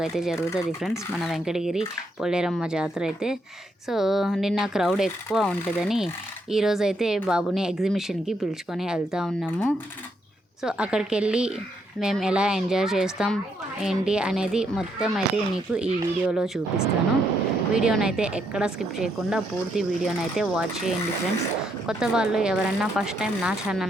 అయితే జరుగుతుంది ఫ్రెండ్స్ మన వెంకటగిరి పోలేరమ్మ జాతర అయితే. సో నిన్న క్రౌడ్ ఎక్కువ ఉంటుందని ఈరోజైతే బాబుని ఎగ్జిబిషన్కి పిలుచుకొని వెళ్తూ ఉన్నాము. సో అక్కడికి వెళ్ళి మేము ఎలా ఎంజాయ్ చేస్తాం ఏంటి అనేది మొత్తం అయితే మీకు ఈ వీడియోలో చూపిస్తాను. వీడియోనైతే ఎక్కడ స్కిప్ చేయకుండా పూర్తి వీడియోనైతే వాచ్ చేయండి ఫ్రెండ్స్. కొత్త వాళ్ళు ఎవరన్నా ఫస్ట్ టైం నా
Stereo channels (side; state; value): both; normal; correlation 0.76